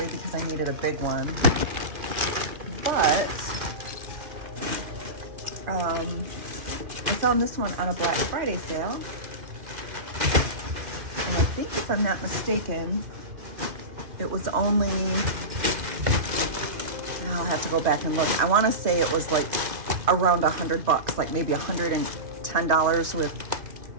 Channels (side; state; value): left; late; 2.5 ms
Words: because I needed a big one. But I found this one on a Black Friday sale. And I think, if I'm not mistaken, it was only, I'll have to go back and look. I want to say it was like around $100, like maybe $110